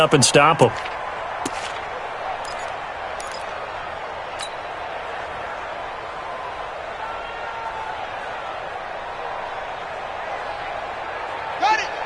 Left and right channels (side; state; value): both; identical; correlation 1.00